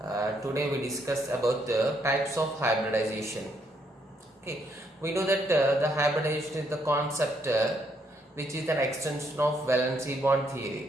Today we discuss about the types of hybridization. Okay, we know that the hybridization is the concept which is an extension of valency bond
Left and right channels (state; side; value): normal; both; correlation 0.73